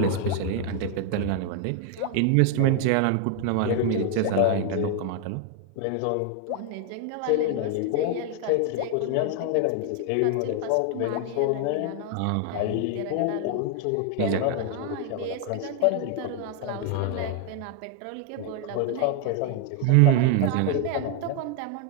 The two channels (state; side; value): different; both; correlation 0.00